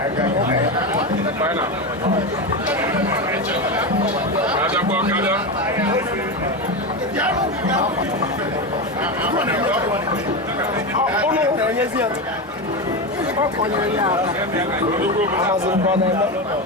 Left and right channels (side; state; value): both; normal; correlation 0.16